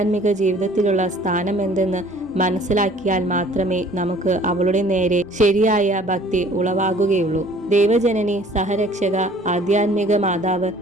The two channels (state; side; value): normal; both; correlation 0.53